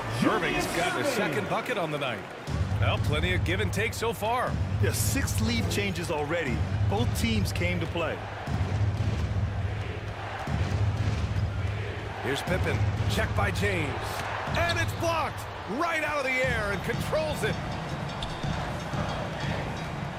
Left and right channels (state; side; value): identical; both; correlation 1.00